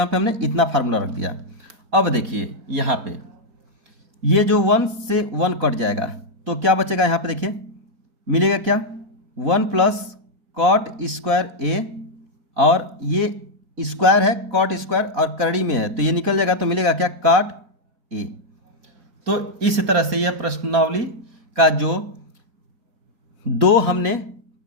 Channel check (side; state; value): left; late; 4.0 ms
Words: पे हमने इतना फार्मूला रख दिया। अब देखिए यहाँ पे ये जो 1 से 1 कट जाएगा तो क्या बचेगा, यहाँ पे देखिए मिलेगा क्या, 1 प्लस कॉट स्क्वायर ए, और ये स्क्वायर है कॉट स्क्वायर और करड़ी में है तो ये निकल जाएगा तो मिलेगा क्या, कॉट ए। तो इस तरह से यह प्रश्नावली का जो 2 हमने